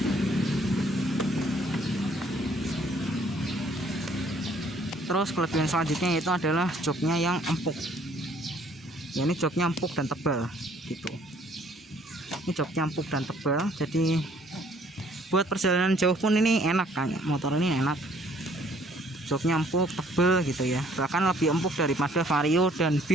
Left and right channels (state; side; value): normal; both; correlation 0.61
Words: Terus kelebihan selanjutnya yaitu adalah joknya yang empuk. Ya, ini joknya empuk dan tebal gitu. Ini joknya empuk dan tebal, jadi buat perjalanan jauh pun ini enak kan. Motor ini enak. Joknya empuk, tebal gitu ya. Bahkan lebih empuk daripada Vario dan